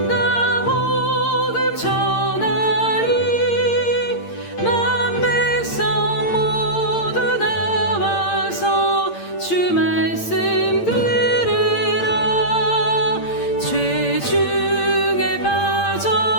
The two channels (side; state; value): right; late; 8.7 ms